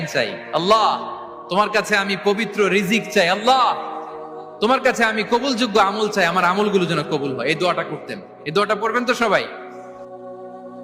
চাই, আল্লাহ তোমার কাছে আমি পবিত্র রিজিক চাই, আল্লাহ তোমার কাছে আমি কবুলযোগ্য আমল চাই, আমার আমলগুলো যেন কবুল হয়। এই দোয়াটা করতেন। এই দোয়াটা পড়বেন তো সবাই।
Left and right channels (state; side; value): identical; both; correlation 1.00